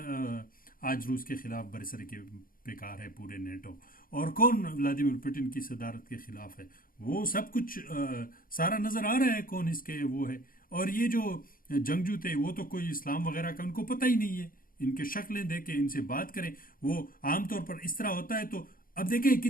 آج روس کے خلاف برسر کے بیکار ہے پورے نیٹو، اور کون ولادیمیر پوٹن کی صدارت کے خلاف ہے، وہ سب کچھ سارا نظر آ رہا ہے کون اس کے وہ ہے. اور یہ جو جنگجو تھے وہ تو کوئی اسلام وغیرہ کا ان کو پتہ ہی نہیں ہے، ان کے شکلیں دیکھیں، ان سے بات کریں. وہ عام طور پر اس طرح ہوتا ہے. تو اب دیکھیں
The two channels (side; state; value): right; late; 0.41 ms